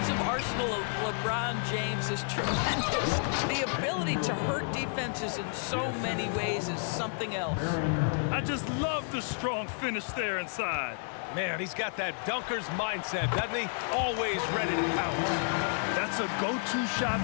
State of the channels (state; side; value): silent; right; 57 dB below the other